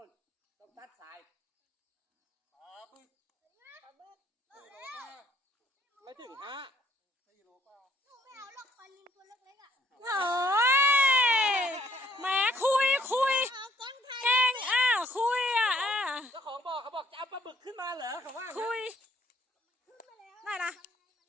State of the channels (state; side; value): normal; both; correlation 0.64